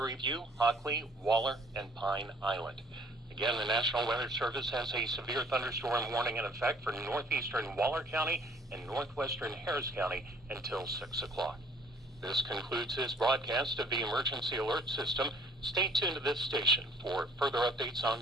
View, Hockley, Waller, and Pine Island. Again, the National Weather Service has a severe thunderstorm warning in effect for northeastern Waller County and northwestern Harris County until 6 o'clock. This concludes this broadcast of the Emergency Alert System. Stay tuned to this station for further updates on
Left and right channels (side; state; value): both; normal; correlation 0.57